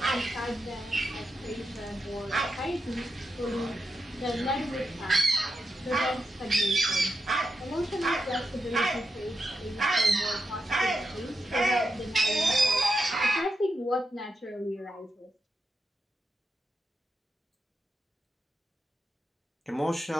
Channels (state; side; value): normal; both; correlation 0.86